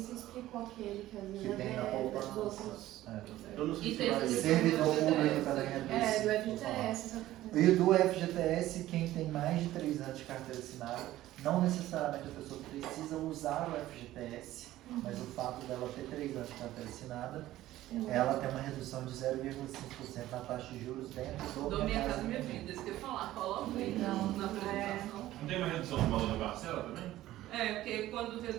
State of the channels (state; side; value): quieter; left; 15.0 dB